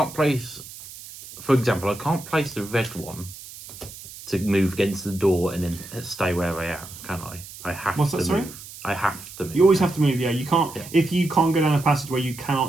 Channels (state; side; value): noise; right; hiss, 15 dB below the sound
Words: place, for example, I can't place the red one to move against the door and then stay where I am, can I? I have What's to that, sorry? move. I have to move. You always have to move, yeah. You can't, Yeah. if you can't go down a passageway, you